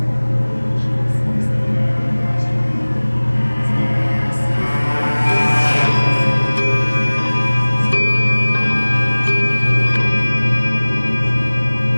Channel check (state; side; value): inverted; both; correlation -1.00